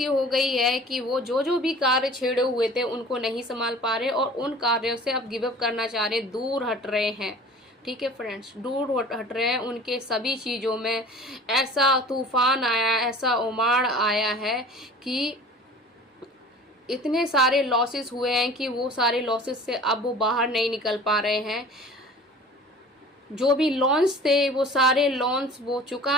हो गई है कि वो जो भी कार्य छेड़े हुए थे उनको नहीं संभाल पा रहे और उन कार्यों से अब गिव अप करना चाह रहे, दूर हट रहे हैं, ठीक है फ्रेंड्स, दूर हट रहे हैं। उनके सभी चीज़ों में ऐसा तूफान आया, ऐसा उमाड़ आया है कि इतने सारे लॉसेस हुए हैं कि वो सारे लॉसेस से अब वो बाहर नहीं निकल पा रहे हैं। जो भी लोन्स थे वो सारे लोन्स वो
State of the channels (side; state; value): both; normal; correlation 0.44